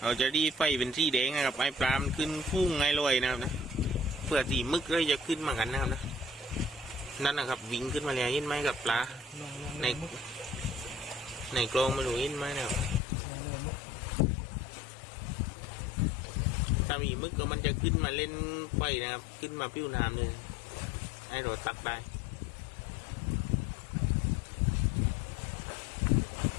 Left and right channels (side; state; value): right; drops out; at 13.0 s